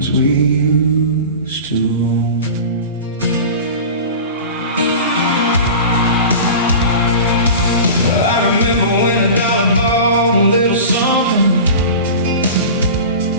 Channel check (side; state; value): both; inverted; correlation -0.34